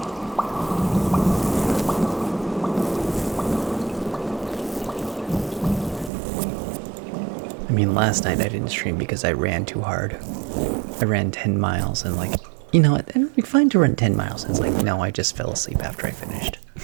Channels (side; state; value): left; drops out; at 6.1 s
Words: I mean, last night I didn't stream because I ran too hard. I ran 10 miles and like, it'd be fine to run 10 miles. It's like, no, I just fell asleep after I finished.